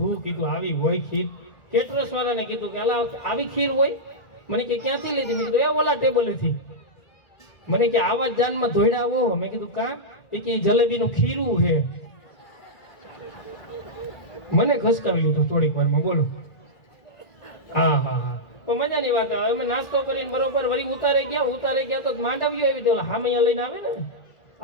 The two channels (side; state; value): right; late; 1.9 ms